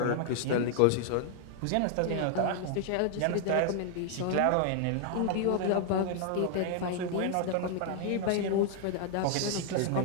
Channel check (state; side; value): different; both; correlation 0.00